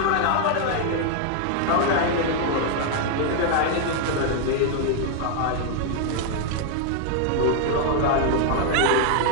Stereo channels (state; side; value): different; both; correlation 0.00